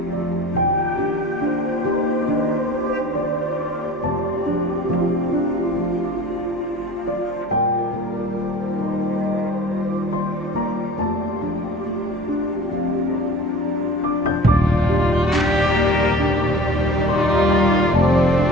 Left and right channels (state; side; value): normal; both; correlation 0.41